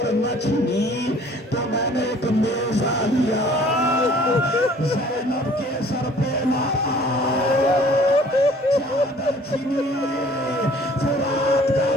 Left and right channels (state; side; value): normal; both; correlation 0.53